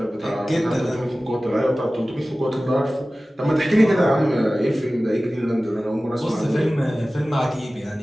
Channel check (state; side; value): normal; both; correlation 0.97